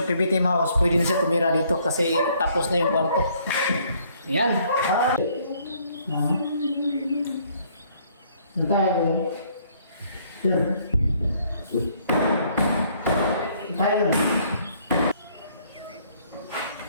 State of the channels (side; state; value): both; inverted; correlation -0.64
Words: PB Team House, pwede na siya tumira dito kasi tapos na yung kwarto. Yan. Tayo. Tayo.